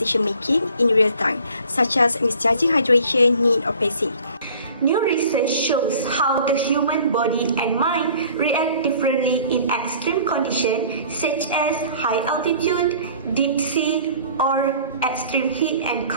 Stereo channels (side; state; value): both; inverted; correlation -0.50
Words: in real time, such as misjudging hydration, need, or pacing. New research shows how the human body and mind react differently in extreme conditions such as high altitude, deep sea, or extreme heat and